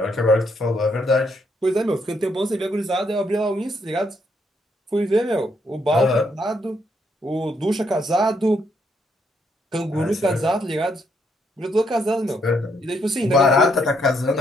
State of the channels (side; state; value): both; normal; correlation 0.74